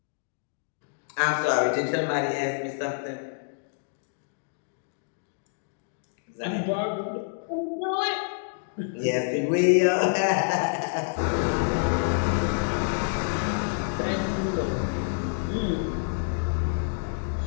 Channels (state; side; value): silent; right; digital silence